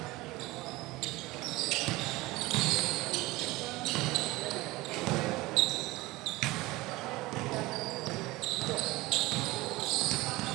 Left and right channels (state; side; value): quieter; left; 20.3 dB